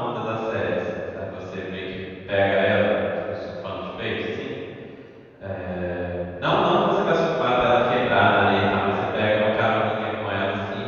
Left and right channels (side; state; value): both; identical; correlation 1.00